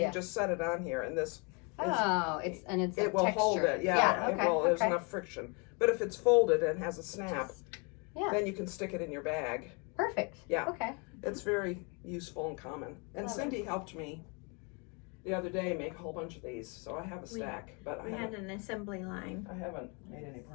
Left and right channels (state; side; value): quieter; right; 32.9 dB